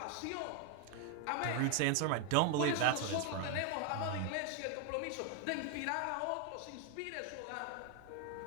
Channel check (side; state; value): both; different; correlation 0.01